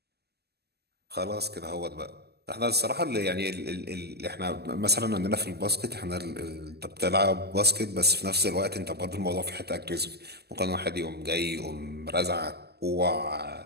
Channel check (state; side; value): late; left; 0.47 ms